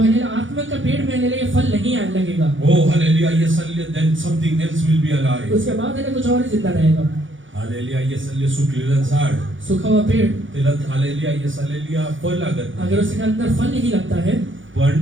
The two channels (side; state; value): left; late; 0.56 ms